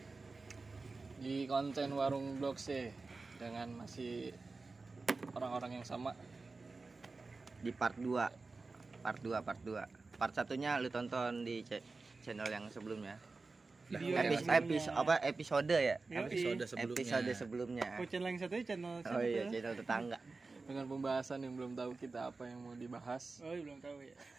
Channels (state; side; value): quieter; left; 3.8 dB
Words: di konten Warung Blok C dengan masih orang-orang yang sama. Di part 2. Part satunya lu tonton di channel yang sebelumnya. Episode ya? Episode sebelumnya. Oh, channel yang satunya channel Oh iya, channel tetangga. Dengan pembahasan yang belum tahu kita apa yang mau dibahas. Oh, belum tahu ya.